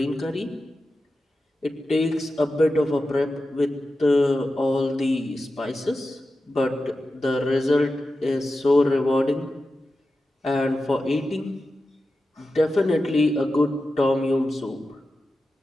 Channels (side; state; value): both; normal; correlation 0.92